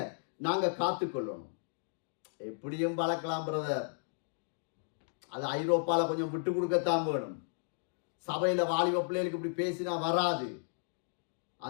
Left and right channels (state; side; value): silent; right; digital silence